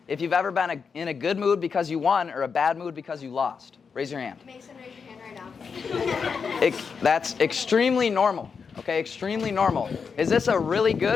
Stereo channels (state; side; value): quieter; right; 5.8 dB